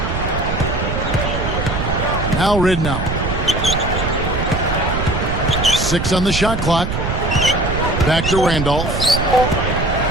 Now Ridnour. 6 on the shot clock. Back to Randolph.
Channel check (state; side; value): noise; right; rumble, 3 dB below the sound